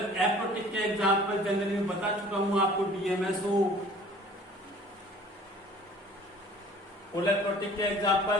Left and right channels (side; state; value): both; normal; correlation 0.50